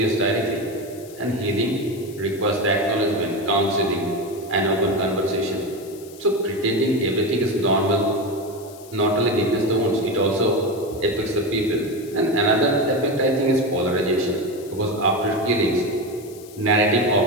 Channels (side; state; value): left; noise; hiss, 21 dB below the sound